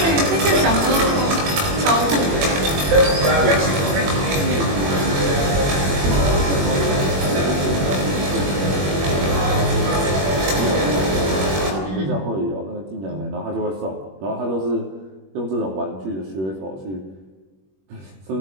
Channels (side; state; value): left; late; 21 ms